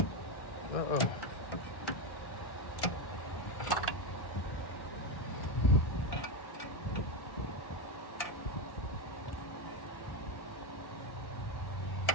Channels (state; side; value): late; right; 1.9 ms